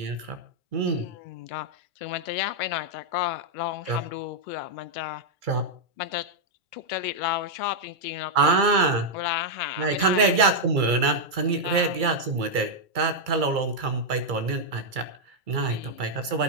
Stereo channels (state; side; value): late; left; 2.3 ms